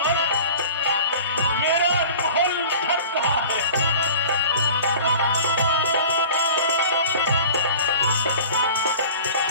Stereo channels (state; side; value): inverted; both; correlation -0.42